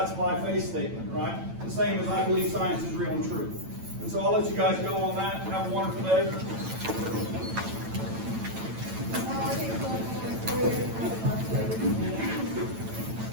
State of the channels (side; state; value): left; late; 9.0 ms